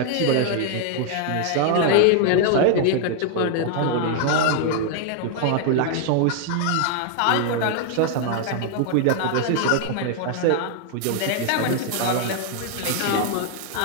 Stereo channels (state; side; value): different; both; correlation 0.00